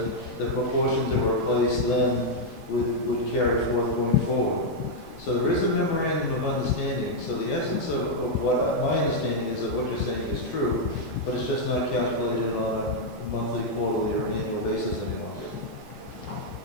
the proportions that were placed then would carry forward going forward. So there is a memorandum of understanding. So the essence of what my understanding is of what you're saying is true, but it's just not calculated on monthly, quarterly, or an annual basis any longer.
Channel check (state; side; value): normal; both; correlation -0.02